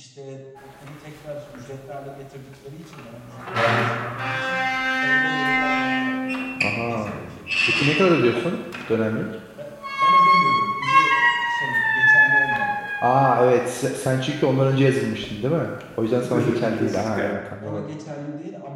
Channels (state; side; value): identical; both; correlation 1.00